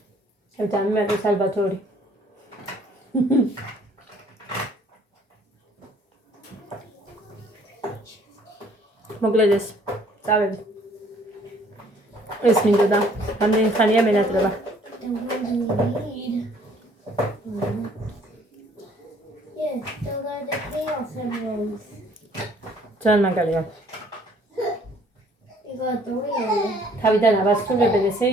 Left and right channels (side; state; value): both; normal; correlation 0.59